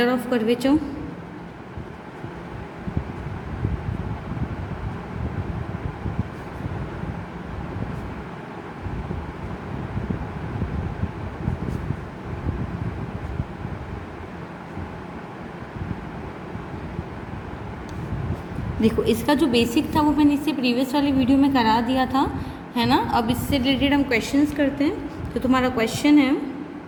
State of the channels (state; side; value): identical; both; correlation 1.00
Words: of curvature. देखो, इसका जो बेसिक था वो मैंने इससे प्रीवियस वाली वीडियो में करा दिया था, है ना। अब इससे रिलेटेड हम क्वेश्चंस करते हैं। तो तुम्हारा क्वेश्चन है,